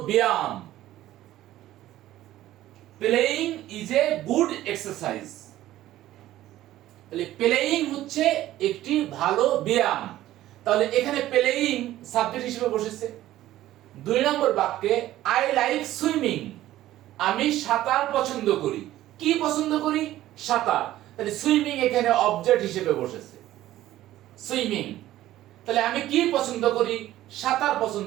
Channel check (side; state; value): left; quieter; 14.4 dB